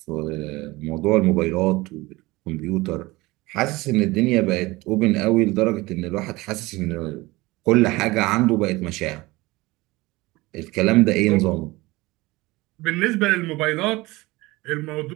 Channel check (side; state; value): left; quieter; 21.2 dB